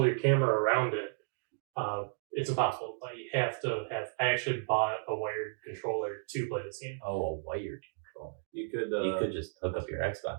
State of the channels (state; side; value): silent; left; digital silence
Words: your camera around it, it's impossible. Like you have to have. I actually bought a wired controller to play this game. Oh, a wired controller. You could You could just hook up your